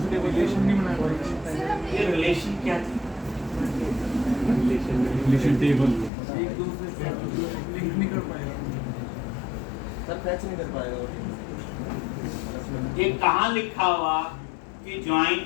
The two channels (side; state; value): right; drops out; at 6.1 s